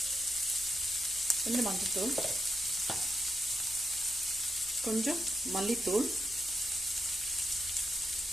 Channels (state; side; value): noise; left; hum, 21 dB below the sound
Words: மஞ்சத்தூள், கொஞ்சம் மல்லித்தூள்,